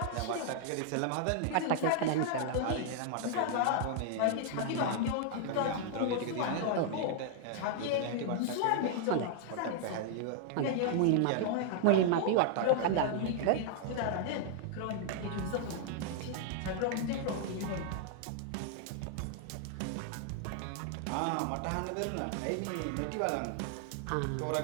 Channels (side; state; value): both; different; correlation -0.01